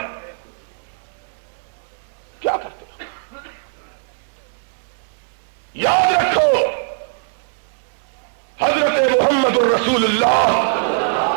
کیا کرتے ہو؟ یاد رکھو حضرت محمد الرسول اللہ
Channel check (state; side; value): silent; left; digital silence